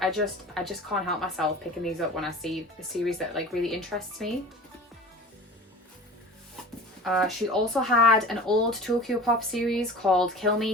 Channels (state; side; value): normal; both; correlation 0.38